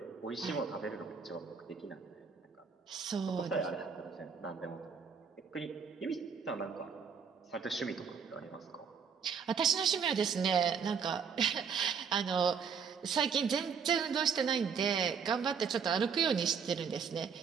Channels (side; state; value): left; quieter; 6.4 dB